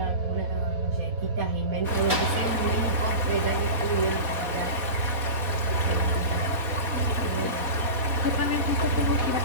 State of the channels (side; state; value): left; late; 4.2 ms